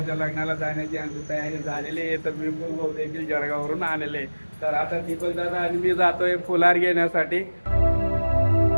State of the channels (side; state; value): both; inverted; correlation -1.00